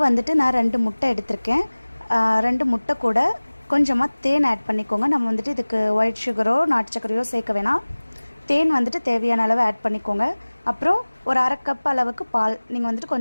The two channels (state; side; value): inverted; both; correlation -1.00